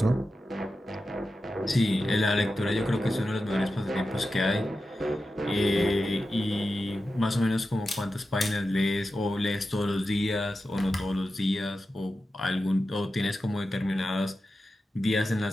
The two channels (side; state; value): both; normal; correlation 0.92